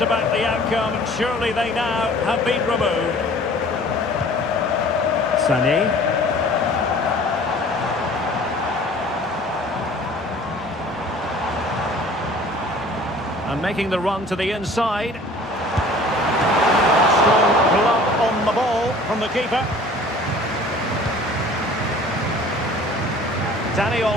the outcome, surely they now have been removed. Sané. And making the run to the inside. Strong glove on the ball from the keeper. Dani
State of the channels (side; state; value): both; normal; correlation 0.48